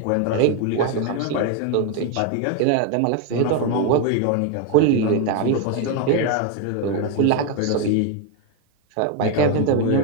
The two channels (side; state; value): both; different; correlation 0.01